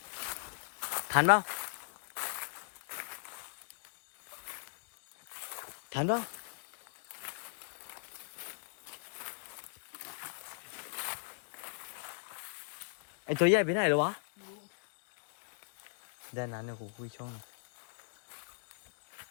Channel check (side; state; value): right; silent; digital silence